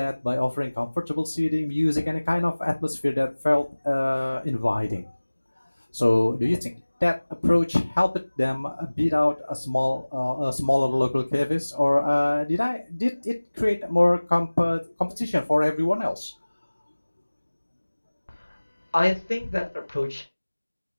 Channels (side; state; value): both; inverted; correlation -1.00